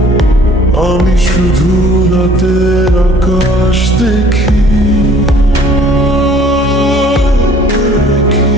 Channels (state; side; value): normal; both; correlation 0.54